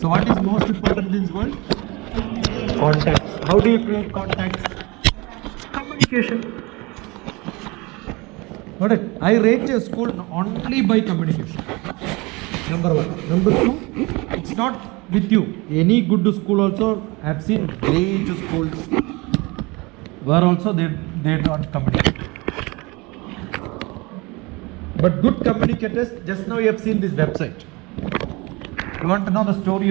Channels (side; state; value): left; quieter; 24.9 dB